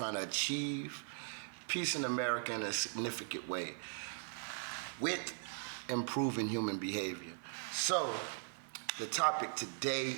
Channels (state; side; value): silent; left; 51 dB below the other